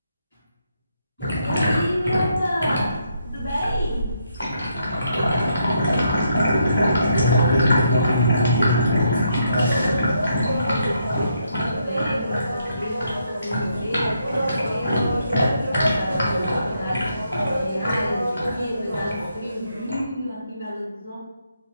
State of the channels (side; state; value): both; inverted; correlation -0.76